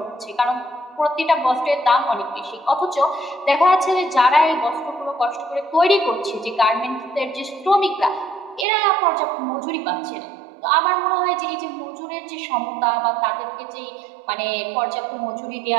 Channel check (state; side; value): drops out; left; at 8.7 s